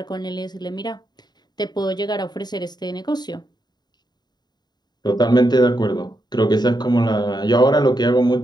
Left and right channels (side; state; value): right; late; 0.20 ms